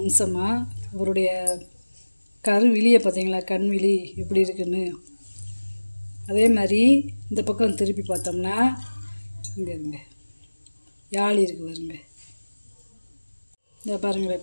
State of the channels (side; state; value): both; inverted; correlation -1.00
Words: அவருடைய கருவிழியை பார்த்தீங்களா, கண்விழி எப்படி இருக்குன்னு. அதே மாதிரி இந்த பக்கம் திருப்பி பார்த்தோம்னா இங்கே இருங்க யாழி இருக்குது பாருங்க. இந்த